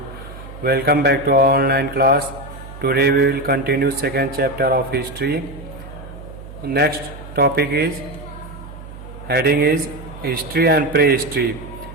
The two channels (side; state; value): right; noise; hum, 15 dB below the sound